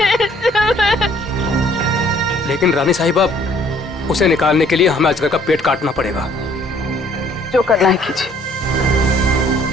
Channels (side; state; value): both; normal; correlation 0.60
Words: लेकिन रानी साहिबा, उसे निकालने के लिए हमें अजगर का पेट काटना पड़ेगा। जो करना है कीजिए।